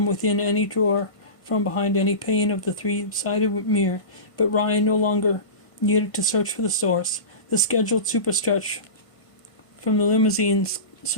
within any drawer, from behind any pane of the three-sided mirror, but Ryan no longer needed to search for the source. The scheduled superstretch from the limousine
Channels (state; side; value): late; right; 1.5 ms